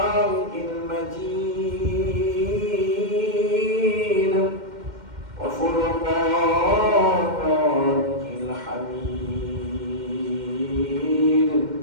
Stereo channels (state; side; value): late; left; 2.1 ms